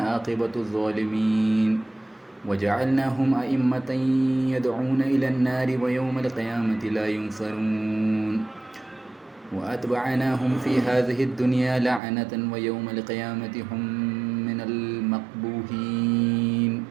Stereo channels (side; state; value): left; drops out; at 12.0 s